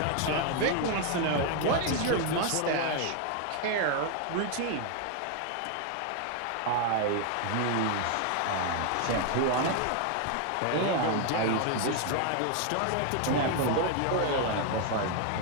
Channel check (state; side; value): different; both; correlation 0.01